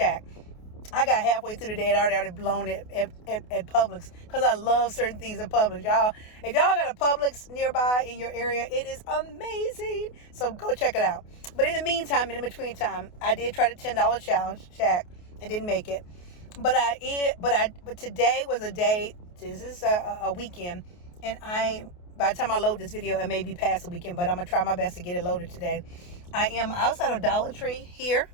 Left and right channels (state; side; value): late; right; 28 ms